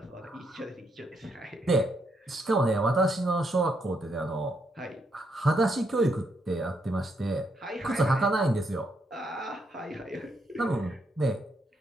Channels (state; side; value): normal; both; correlation 0.77